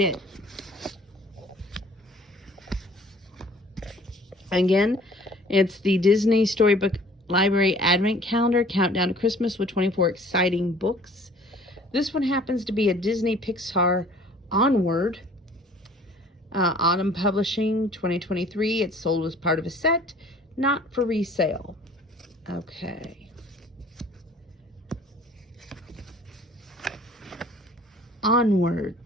Again, it's the Disney Storybook Library Advent Calendar, Countdown to Christmas with 24 exciting books. This one happens to be a Disney Pixar Onward, Autumn Publishing, 2023. It's sold as part of a set, not for resale. Okay. Onward,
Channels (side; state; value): both; normal; correlation 0.52